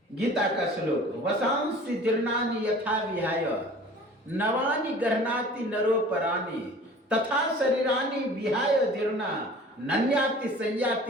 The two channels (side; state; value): both; normal; correlation 0.45